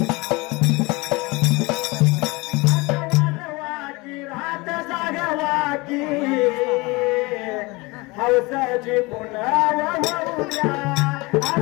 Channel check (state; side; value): quieter; right; 24.3 dB